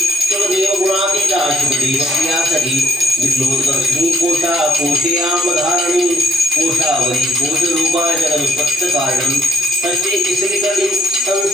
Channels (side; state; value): both; normal; correlation 0.69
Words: शुभदेव गुणातीता शुभदेव प्रिया सखी विद्लोदर्शिनी कोशा कोशयामधारणी कोशावरी कोशरूपा जगदुत्पत्त कारणं षष्ठी तिसरीकरणी